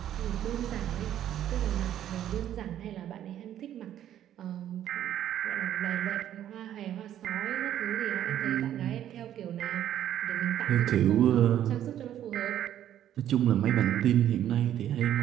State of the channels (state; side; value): quieter; left; 11.2 dB